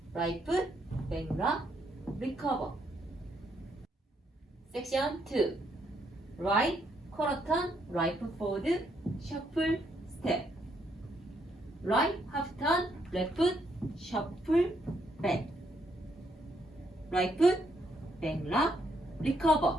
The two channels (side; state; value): both; normal; correlation 0.74